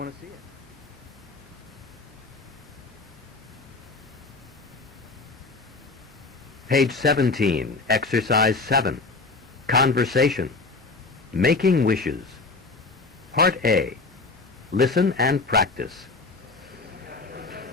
to see it? Page 17, Exercise 7. Conversation. Making wishes. Part A. Listen and practice.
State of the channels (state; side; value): quieter; right; 3.7 dB